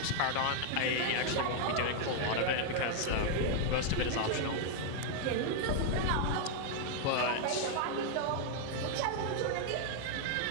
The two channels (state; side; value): different; both; correlation 0.00